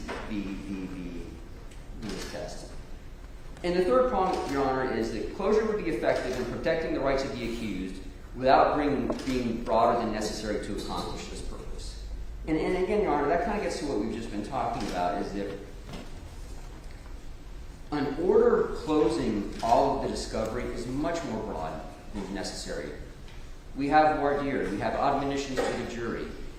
the test. And the third point, Your Honor, is that closure would be effective in protecting the rights of the accused without being broader than necessary to accomplish this purpose. And again, Your Honor, that kind of gets to what we've just been talking about, is that an order closing all of the discovery is much more broad than necessary. We have voir dire, we have admonitions to the jury.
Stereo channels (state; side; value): identical; both; correlation 1.00